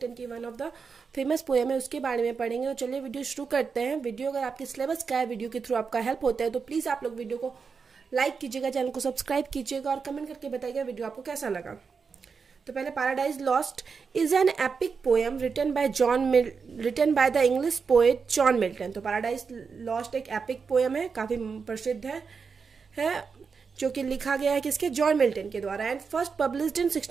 की one of the famous poem है, उसके बारे में पढ़ेंगे। तो चलिए वीडियो शुरू करते हैं। वीडियो अगर आपके सिलेबस का है, वीडियो के थ्रू आपका हेल्प होता है, तो प्लीज़ आप लोग वीडियो को लाइक कीजिएगा, चैनल को सब्सक्राइब कीजिएगा और कमेंट करके बताइएगा वीडियो आपको कैसा लगा। तो पहले Paradise Lost is an epic poem written by the English poet John Milton. तो पैराडाइज लॉस्ट एक एपिक पोएम है, काफ़ी प्रसिद्ध है जो कि लिखा गया है किसके, जॉन मिल्टन के द्वारा, एंड फर्स्ट पब्लिश्ड इन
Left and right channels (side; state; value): left; quieter; 5.5 dB